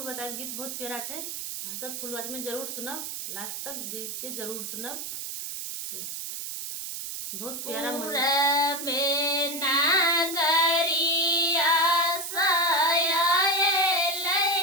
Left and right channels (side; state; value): right; noise; hiss, 6 dB below the sound